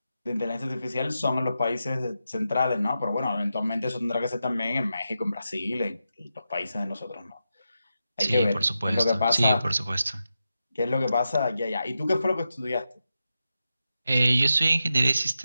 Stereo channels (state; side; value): inverted; both; correlation -0.89